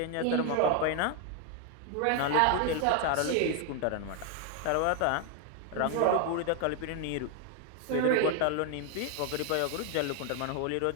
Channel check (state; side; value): different; both; correlation 0.01